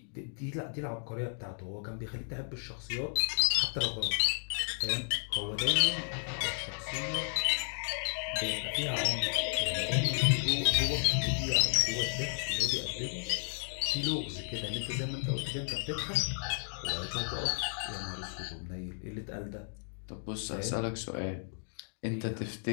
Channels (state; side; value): silent; right; digital silence